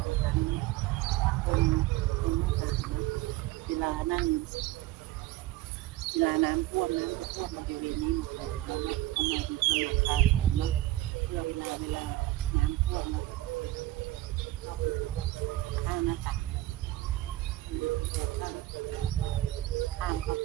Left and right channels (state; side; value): quieter; left; 16.7 dB